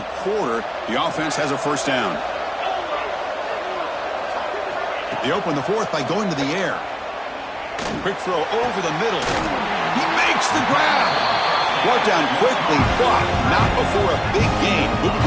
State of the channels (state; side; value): identical; both; correlation 1.00